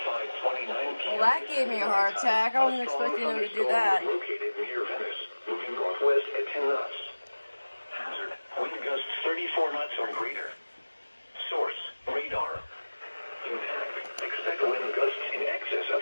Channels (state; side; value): inverted; both; correlation -1.00